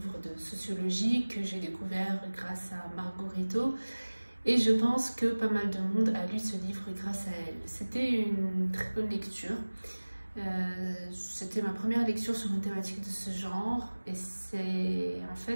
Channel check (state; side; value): inverted; both; correlation -1.00